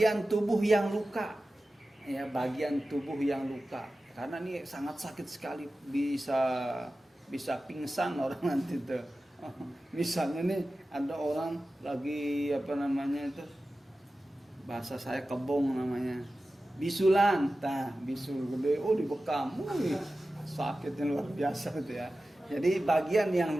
tubuh yang luka, ya bagian tubuh yang luka, karena ini sangat sakit sekali, bisa pingsan orang nanti tuh. Misalnya nih ada orang lagi bahasa saya kebong namanya, bisulan, bisul gede, dibekam, sakitnya luar biasa gitu ya. Jadi bagian yang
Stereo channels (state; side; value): normal; both; correlation 0.95